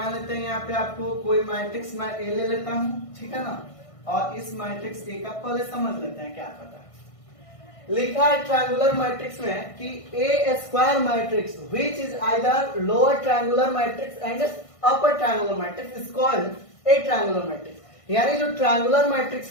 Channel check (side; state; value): right; late; 1.5 ms